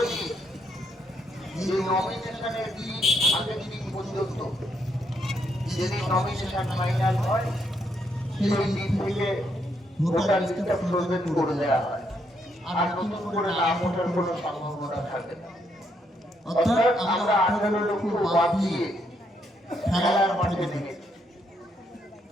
নিই যে নমিনেশনের দিন আগের দিন পর্যন্ত যেদিন নমিনেশন ফাইনাল হয় সেই দিন থেকে ভোটার লিস্টটা ফ্রোজেন করে দেওয়া হয়, আর নতুন করে নাম ওঠার কোনো সম্ভাবনা থাকে না। অর্থাৎ আমরা 18 লক্ষ বাদ দিয়ে খেলার মাঠে নেমেছি।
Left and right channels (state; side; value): normal; both; correlation 0.75